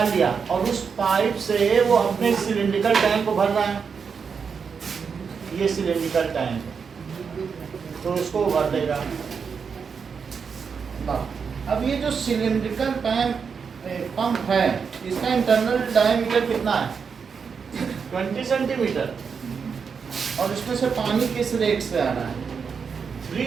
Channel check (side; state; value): left; quieter; 6.0 dB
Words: लिया और उस पाइप से वो अपने सिलिंड्रिकल टैंक को भर रहा है। ये सिलिंड्रिकल टैंक तो उसको भर देगा। अब ये जो सिलिंड्रिकल पंप है, इसका इंटरनल डायमीटर कितना है? 20 सेंटीमीटर, और इसमें से पानी किस रेट से आ रहा है?